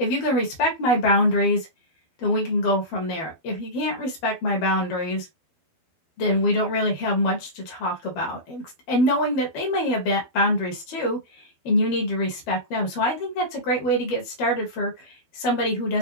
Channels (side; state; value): right; late; 12 ms